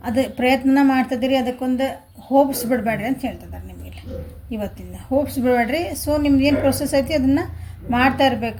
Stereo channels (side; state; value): both; identical; correlation 1.00